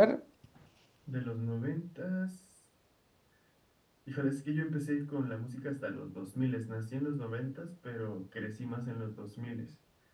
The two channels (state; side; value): identical; both; correlation 1.00